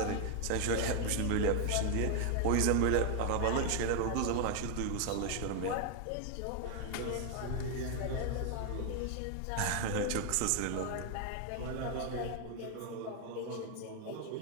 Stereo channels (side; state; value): both; different; correlation 0.01